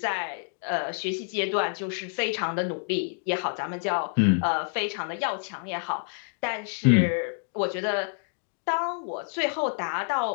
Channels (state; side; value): silent; right; 59 dB below the other